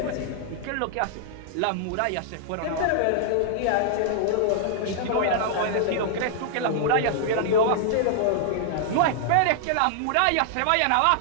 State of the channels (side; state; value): both; different; correlation -0.01